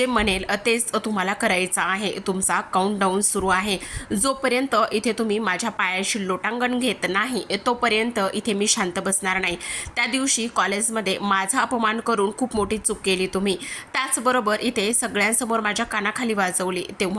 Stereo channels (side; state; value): both; identical; correlation 1.00